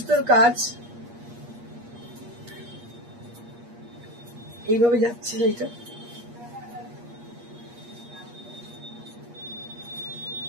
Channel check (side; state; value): left; late; 8.4 ms